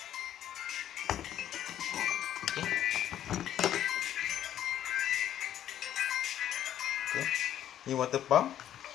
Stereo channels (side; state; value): right; quieter; 11.1 dB